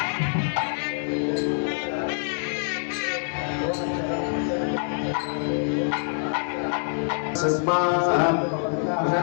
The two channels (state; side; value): silent; right; 60 dB below the other